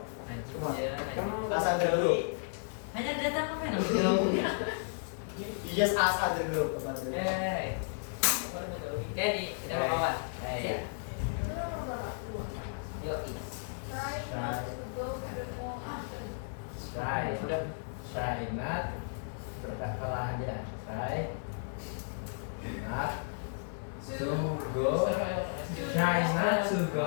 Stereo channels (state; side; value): silent; right; digital silence